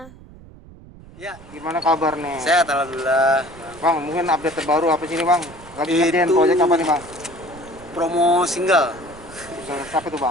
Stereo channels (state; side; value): noise; right; rumble, 20 dB below the sound